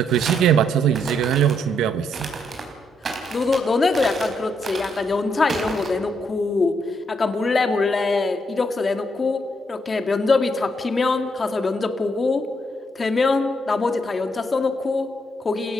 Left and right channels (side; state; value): both; normal; correlation 0.75